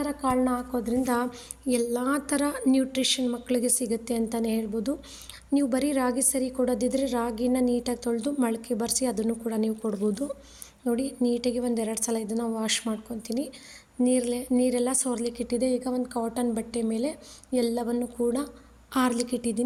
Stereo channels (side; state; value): both; identical; correlation 1.00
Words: ಕಾಳನ್ನ ಹಾಕೋದ್ರಿಂದ ಎಲ್ಲ ಥರ ನ್ಯೂಟ್ರಿಷನ್ ಮಕ್ಕಳಿಗೆ ಸಿಗುತ್ತೆ ಅಂತಲೇ ಹೇಳ್ಬೋದು. ನೀವು ಬರೀ ರಾಗಿ ಸರಿ ಕೊಡೋದಿದ್ರೆ ರಾಗಿನ ನೀಟಾಗಿ ತೊಳೆದು ಮೊಳಕೆ ಬರೆಸಿ ಅದನ್ನು ಕೂಡ ನೀವು ಕೊಡ್ಬೋದು. ನೋಡಿ, ನೀಟಾಗಿ 1-2 ಸಲ ಇದನ್ನು ವಾಶ್ ಮಾಡ್ಕೊತೀನಿ. ನೀರೆಲ್ಲ ಸೋರ್ಲಿಕ್ಕೆ ಇಟ್ಟಿದೆ. ಈಗ ಒಂದು ಕಾಟನ್ ಬಟ್ಟೆ ಮೇಲೆ ಎಲ್ಲವನ್ನು ಕೂಡ ಆರ್ಲಿಕ್ಕೆ